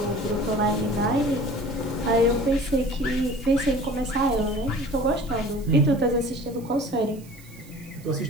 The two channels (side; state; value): right; noise; hiss, 23 dB below the sound